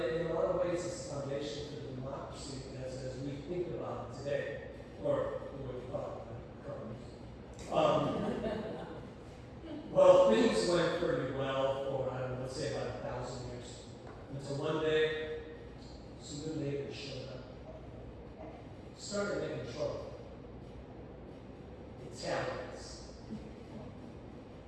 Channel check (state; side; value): identical; both; correlation 1.00